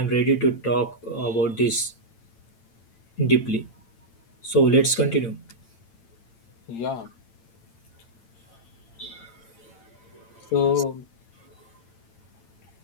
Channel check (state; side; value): late; right; 8.9 ms